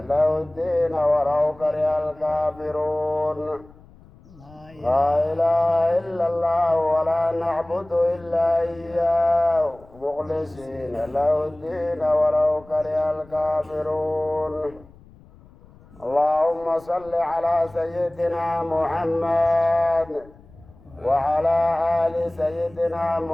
له الدين ولو كره الكافرون. لا إله إلا الله ولا نعبد إلا إياه مخلصين له الدين ولو كره الكافرون. اللهم صل على سيدنا محمد وعلى آل سيدنا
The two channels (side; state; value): left; noise; rumble, 25 dB below the sound